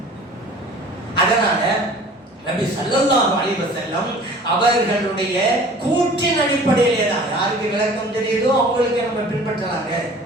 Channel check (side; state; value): both; normal; correlation 0.46